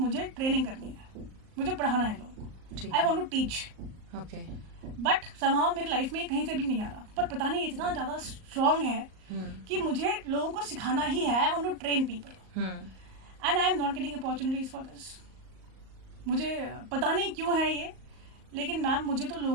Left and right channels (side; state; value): left; late; 38 ms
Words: ट्रेनिंग करनी है, मुझे पढ़ाना है लोगों को, I want to teach. Okay. But somehow मेरी लाइफ में कहीं से भी नहीं आ रहा, पर पता नहीं इतना ज़्यादा स्ट्रॉन्ग है कि मुझे लोगों को सिखाना ही है. I want to train people and I am not getting opportunities for this. मुझे पता नहीं क्यों है ये, लेकिन मैम मुझे तो